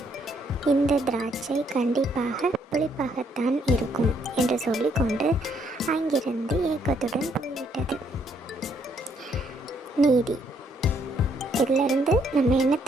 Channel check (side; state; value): both; normal; correlation 0.70